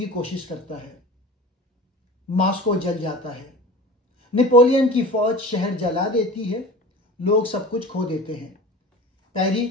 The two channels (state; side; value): normal; both; correlation 0.37